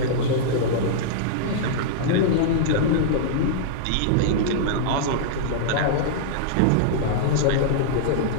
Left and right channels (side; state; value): both; different; correlation -0.02